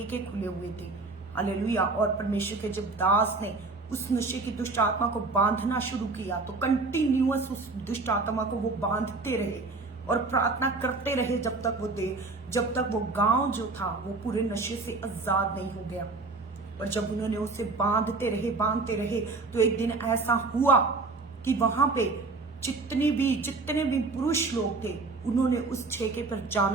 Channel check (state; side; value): quieter; left; 3.8 dB